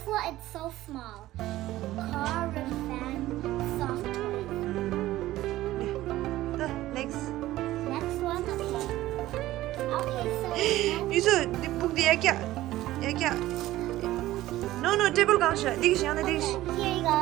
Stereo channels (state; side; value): quieter; left; 15.7 dB